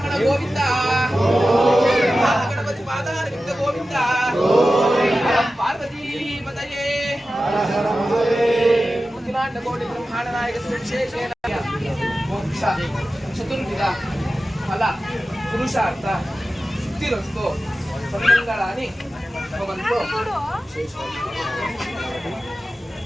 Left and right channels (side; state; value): both; normal; correlation 0.94